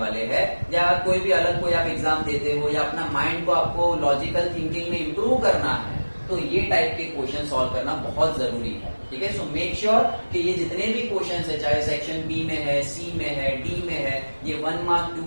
हैं, या कोई भी अलग कोई आप एग्जाम देते हो या अपना माइंड को आपको लॉजिकल थिंकिंग में इम्प्रूव करना है, तो ये टाइप के क्वेश्चन सॉल्व करना बहुत जरूरी है। ठीक है, सो मेक श्योर कि ये जितने भी क्वेश्चंस है, चाहे सेक्शन बी में है, सी में है, डी में है, ये 1 मार्क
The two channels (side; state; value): both; inverted; correlation -1.00